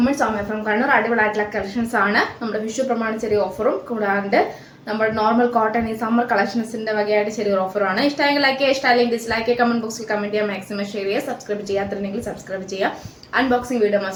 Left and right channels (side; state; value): both; identical; correlation 1.00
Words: Soumya from Kannur. അടിപൊളിയായിട്ടുള്ള കളക്ഷൻസ് ആണ്. നമ്മുടെ വിഷു പ്രമാണി ചെറിയ ഓഫറും കൂടാണ്ട് നമ്മുടെ നോർമൽ കോട്ടൺ ഈ സമ്മർ കളക്ഷൻസിന്റെ വകയായിട്ട് ചെറിയൊരു ഓഫറാണ്. ഇഷ്ടമെങ്കിൽ ലൈക്ക് ചെയ്യുക, ഇഷ്ടമല്ലെങ്കിൽ ഡിസ്ലൈക്ക് ചെയ്യുക, കമന്റ് ബോക്സിൽ കമന്റ് ചെയ്യുക, മാക്സിമം ഷെയർ ചെയ്യുക, സബ്സ്ക്രൈബ് ചെയ്യാത്തില്ലെങ്കിൽ സബ്സ്ക്രൈബ് ചെയ്യുക. അൺബോക്സിംഗ് വീഡിയോ